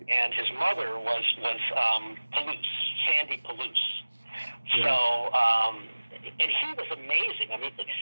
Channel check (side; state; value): both; inverted; correlation -1.00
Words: And his mother was Palouse, Sandy Palouse. Yeah. So, and he was amazing. I mean, the